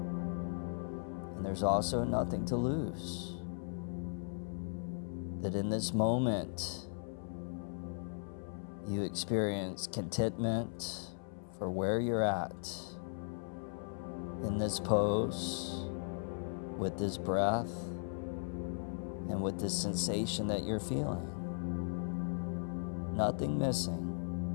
and there's also nothing to lose. That in this moment, you experience contentment for where you're at in this pose, with this breath, and with this sensation that you're feeling. Nothing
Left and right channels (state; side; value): silent; right; 53 dB below the other